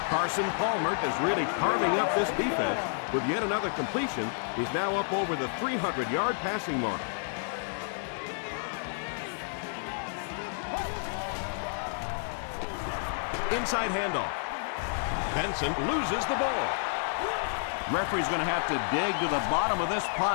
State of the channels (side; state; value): right; silent; digital silence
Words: Carson Palmer is really carving up this defense with yet another completion. He's now up over the 300-yard passing mark. Inside handoff. Benson loses the ball. Referee's going to have to dig to the bottom of this